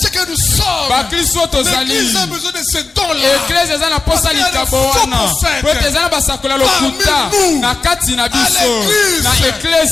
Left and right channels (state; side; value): quieter; right; 3.9 dB